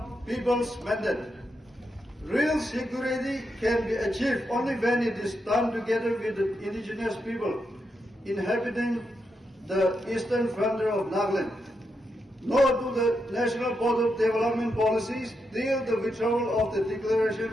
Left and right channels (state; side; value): normal; both; correlation 0.84